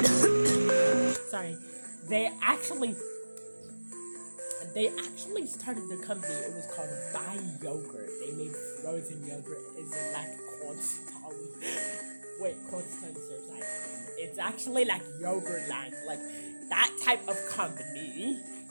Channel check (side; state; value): both; inverted; correlation -1.00